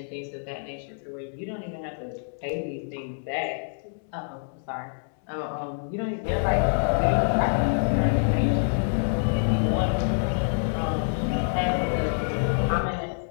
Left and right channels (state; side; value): silent; right; digital silence